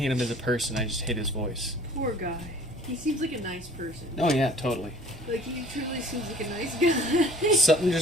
him as a person, I just hate his voice. Poor guy. He seems like a nice person. Oh yeah, totally. Like, he truly seems like a nice guy. Something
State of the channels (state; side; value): normal; both; correlation 0.51